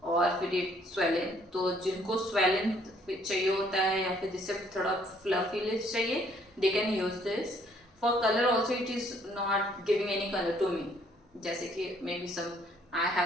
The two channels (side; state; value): both; normal; correlation 0.64